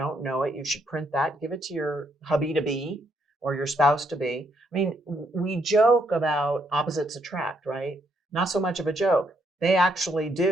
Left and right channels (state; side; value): normal; both; correlation 0.74